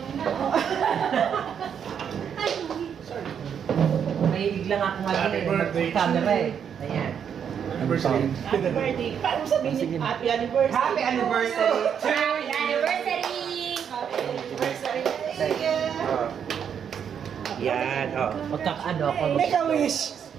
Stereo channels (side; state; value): left; quieter; 7.9 dB